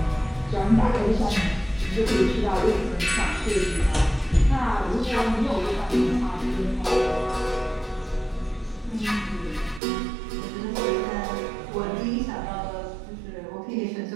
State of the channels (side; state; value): left; drops out; at 9.8 s